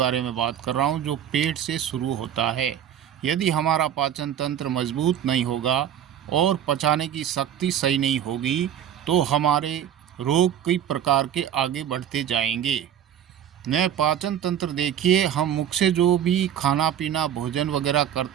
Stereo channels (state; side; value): quieter; left; 9.9 dB